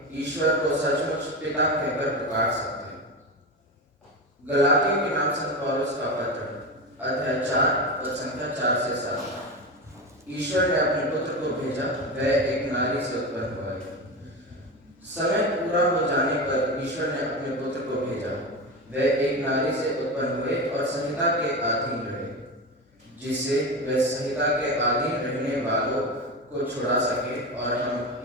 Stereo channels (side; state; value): both; normal; correlation 0.21